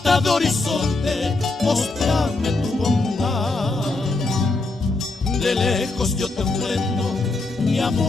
de horizonte, mostrame tu bondad. De lejos yo te ofrendo mi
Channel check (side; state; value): right; quieter; 3.3 dB